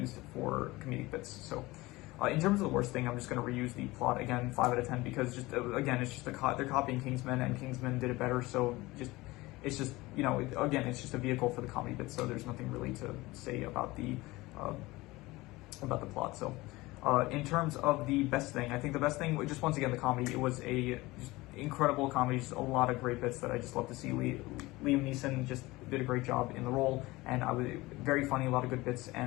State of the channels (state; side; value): quieter; right; 20.5 dB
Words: for comedic bits. So in terms of the worst thing, I'm just gonna reuse the plot again, 5 out of 10, because just again, it's just they're copying Kingsman, and Kingsman did it better. So it's just, you know, again, it's just a vehicle for the comedy bits. So there's nothing really to say about the plot. So in terms of the best thing, I think the best thing, just once again, the comedy. It was a just incredible comedy, just a lot of great bits that I just love to see. Liam Neeson just did a great job in the role, and I was very funny, a lot of good bits,